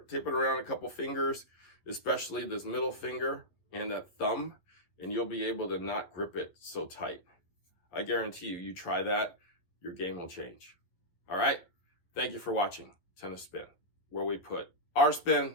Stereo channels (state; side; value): late; right; 11 ms